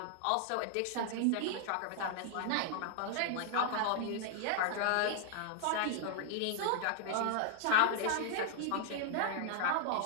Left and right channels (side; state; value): both; different; correlation 0.00